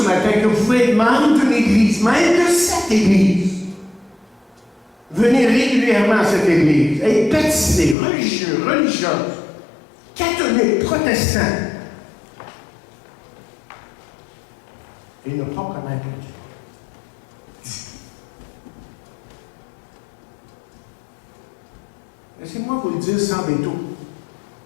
matin que vous pouvez être membre d'une Église, même de cette Église. Venez régulièrement à cette Église, être baptisé, religieux, religieuse, catholique, protestant, et ne pas connaître Dieu. Laissez-moi vous le dire sans détour.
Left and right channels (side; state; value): right; drops out; at 8.0 s